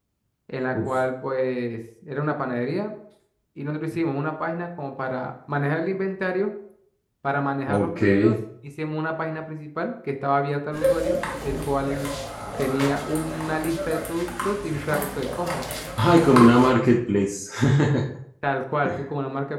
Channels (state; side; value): identical; both; correlation 1.00